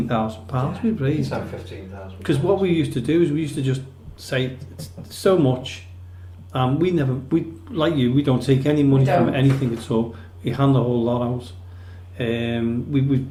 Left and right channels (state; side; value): identical; both; correlation 1.00